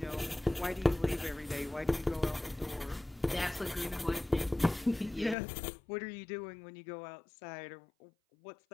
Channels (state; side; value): drops out; right; at 5.4 s